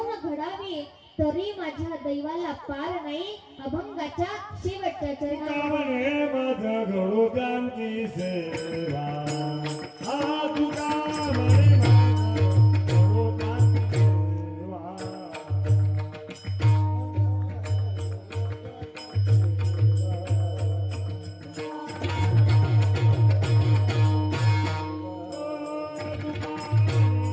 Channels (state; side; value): identical; both; correlation 1.00